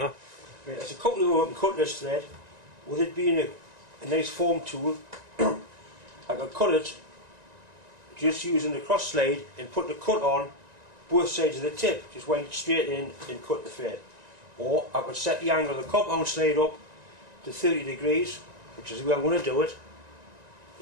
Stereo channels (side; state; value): left; late; 1.9 ms